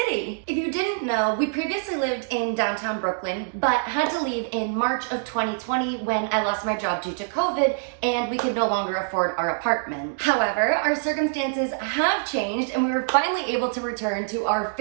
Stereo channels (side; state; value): left; silent; digital silence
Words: If you didn't know, we previously lived in downtown Brooklyn, but had to leave in March of 2020 when I lost my job due to COVID and we could no longer afford our apartment. However, our circumstances have changed and we were finally able to return to our